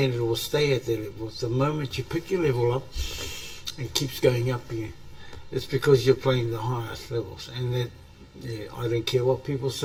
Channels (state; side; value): identical; both; correlation 1.00